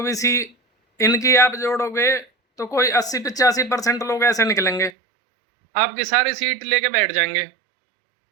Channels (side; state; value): left; drops out; at 4.9 s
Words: इनकी आप जोड़ोगे तो कोई 80-85% लोग ऐसे निकलेंगे, आपकी सारी सीट लेके बैठ जाएंगे।